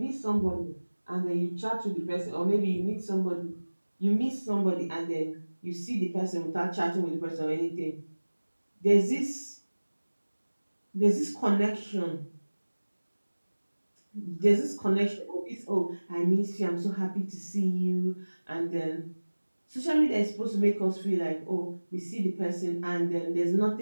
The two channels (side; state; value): both; inverted; correlation -1.00